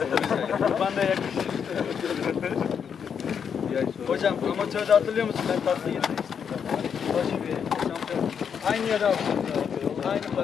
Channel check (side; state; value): right; quieter; 7.2 dB